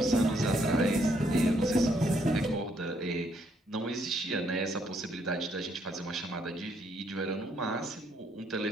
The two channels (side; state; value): both; normal; correlation 0.71